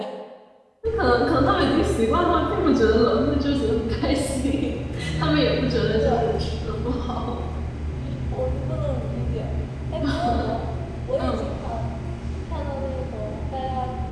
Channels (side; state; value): both; identical; correlation 1.00